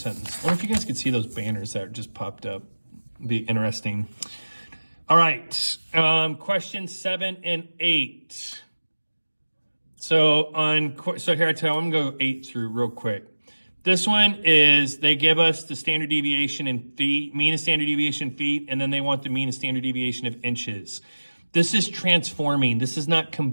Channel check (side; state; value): both; inverted; correlation -1.00